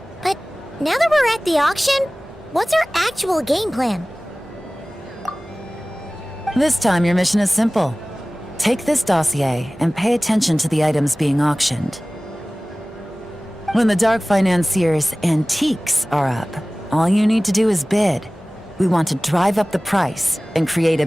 but now that we're at the auction, what's our actual game plan? This time your mission is simple. Take this dossier and pay attention to the items being auctioned. When the Dark Financier's antiques are up, all you need to do is bid. We want to drive up the price and create a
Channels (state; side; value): normal; both; correlation 0.98